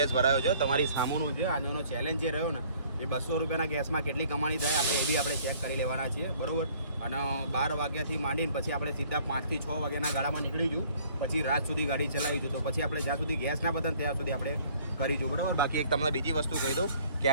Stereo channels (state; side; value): inverted; both; correlation -0.57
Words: ભરાયો છે તમારી સામુનું છે. આનો ચેલેન્જ જે રહ્યો ને એ 200 રૂપિયાના ગેસમાં કેટલી કમાણી થાય આપણે એ બી આપણે ચેક કરી લેવાના છીએ, બરાબર. અને 12 વાગ્યાથી માંડીને પછી આપણે સીધા 5 થી 6 વાગ્યાના ગાળામાં નીકળીશું, પછી રાત સુધી ગાડી ચલાવીશું. તો પછી આપણે જ્યાં સુધી ગેસ ના પતન ત્યાં સુધી આપણે કરીશું, બરાબર. બાકી એક તમને બીજી વસ્તુ કહી દઉં કે